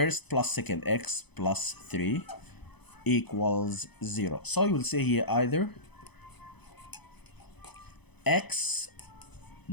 plus second, x plus 3 equals 0. So you will say here either x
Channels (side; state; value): right; late; 0.98 ms